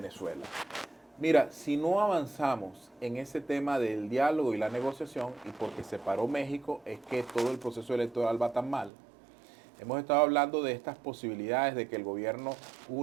Mira, si no avanzamos en ese tema del diálogo y la negociación, y porque se paró México, es que todo el proceso electoral va tan mal. Hemos estado hablando de estas posibilidades de que el gobierno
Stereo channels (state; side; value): drops out; left; at 8.9 s